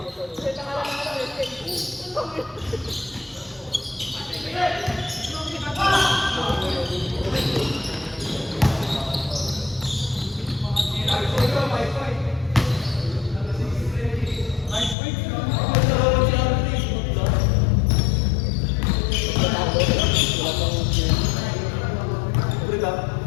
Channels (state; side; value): drops out; right; at 15.0 s